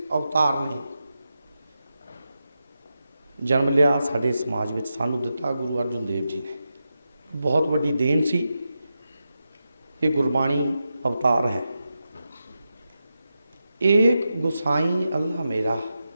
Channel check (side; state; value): both; inverted; correlation -0.89